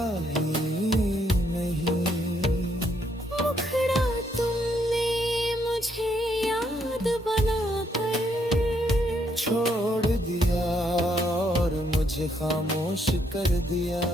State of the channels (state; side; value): normal; both; correlation 0.73